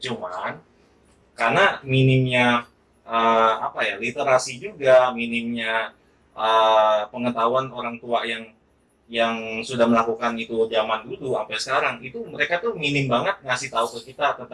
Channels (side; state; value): both; identical; correlation 1.00